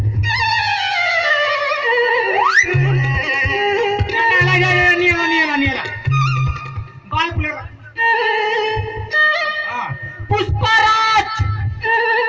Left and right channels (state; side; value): identical; both; correlation 1.00